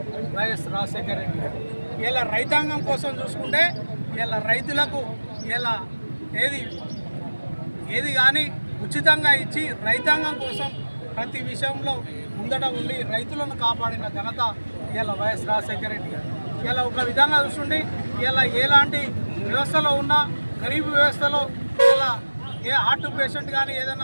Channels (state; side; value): inverted; both; correlation -1.00